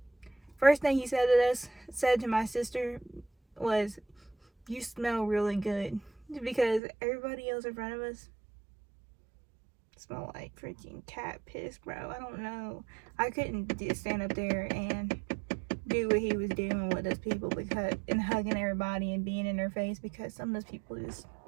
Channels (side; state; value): left; drops out; at 6.8 s